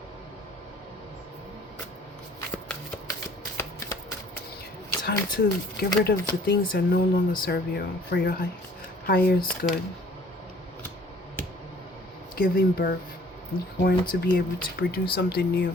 Time to get rid of the things that no longer serve you for your highest good. Giving birth. You're going to be able to produce something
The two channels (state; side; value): normal; both; correlation 0.54